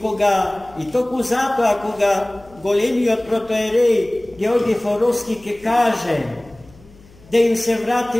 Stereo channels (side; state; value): left; noise; hum, 25 dB below the sound